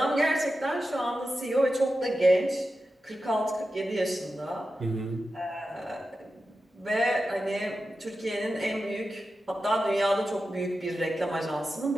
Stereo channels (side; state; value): both; normal; correlation 0.91